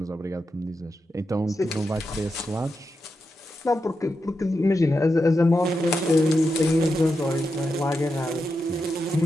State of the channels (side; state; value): both; normal; correlation 0.87